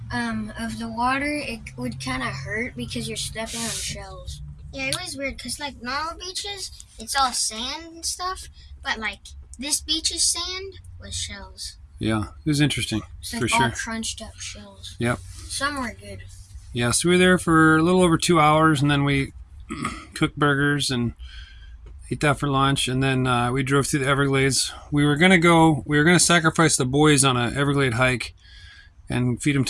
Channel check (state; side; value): identical; both; correlation 1.00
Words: of the water, it would kind of hurt because you're stepping on shells. Yeah, it was weird because like normal beaches, it's all sand and stuff, but like this beach's sand was shells. Yeah, it was interesting, It's for like sure. all crunched up shells. Yep. Some were good. Yeah, so we were there for a little over 2 hours, and then we cooked burgers and ate that for lunch, and then we drove through the Everglades. We were gonna sacrifice the boys on a Everglade hike and feed them